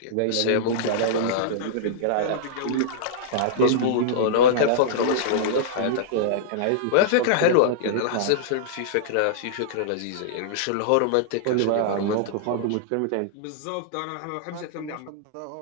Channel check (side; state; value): both; different; correlation -0.02